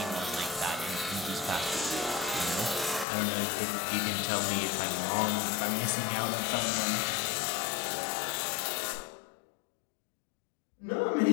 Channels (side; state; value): right; drops out; at 3.1 s